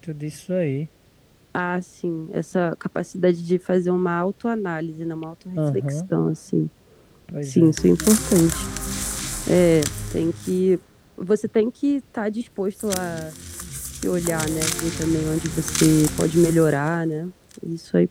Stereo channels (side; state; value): both; identical; correlation 1.00